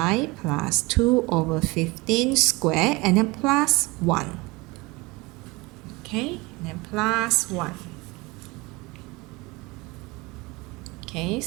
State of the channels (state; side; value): quieter; left; 24.0 dB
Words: plus 2 over 15 squared, and then plus 1. Okay, and then plus 1. Okay,